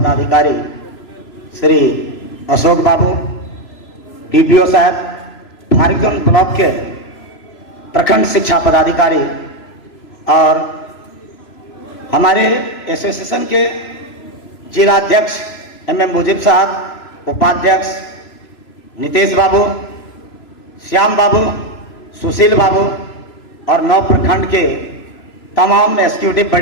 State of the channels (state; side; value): late; right; 3.0 ms